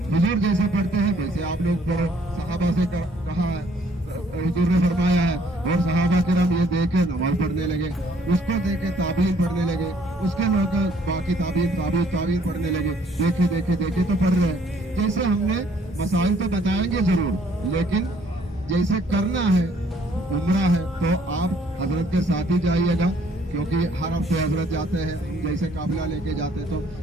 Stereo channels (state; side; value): normal; both; correlation 0.62